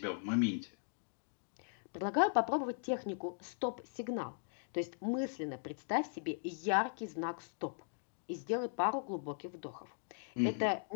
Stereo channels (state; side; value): silent; right; digital silence